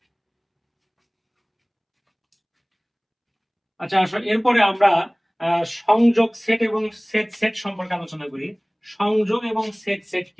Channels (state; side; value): identical; both; correlation 1.00